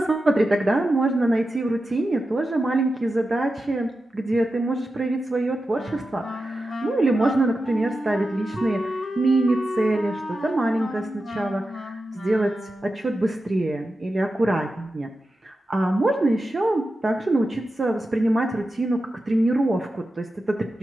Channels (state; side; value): normal; both; correlation 0.91